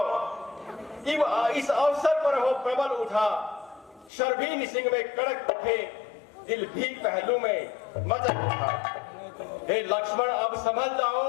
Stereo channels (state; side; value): drops out; right; at 4.1 s